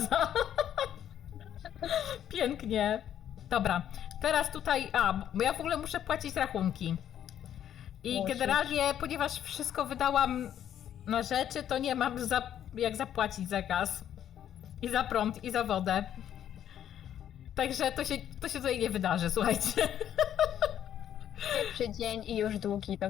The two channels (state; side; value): quieter; right; 10.3 dB